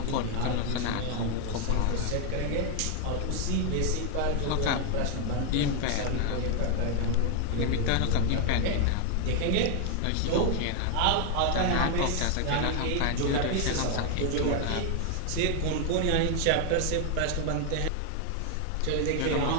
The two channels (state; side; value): different; both; correlation 0.00